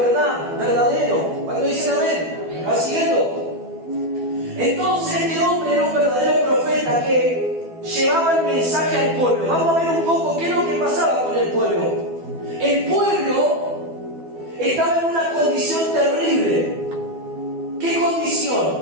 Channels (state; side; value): late; left; 12 ms